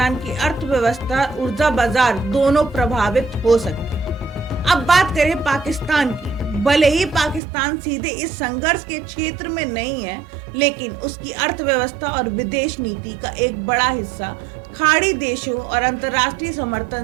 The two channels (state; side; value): drops out; left; at 7.4 s